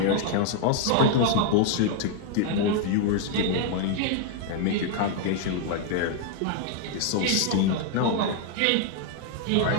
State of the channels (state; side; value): different; both; correlation 0.00